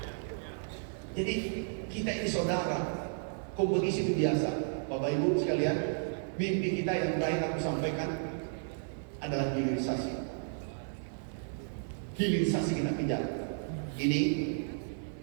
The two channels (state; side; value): silent; left; digital silence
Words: Jadi kita ini saudara, kompetisi itu biasa. Bapak Ibu sekalian, mimpi kita yang terakhir aku sampaikan adalah hilirisasi. Hilirisasi kita kejar. Ini